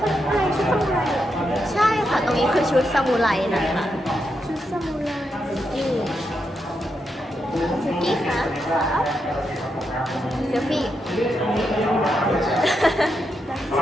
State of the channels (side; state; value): both; normal; correlation 0.83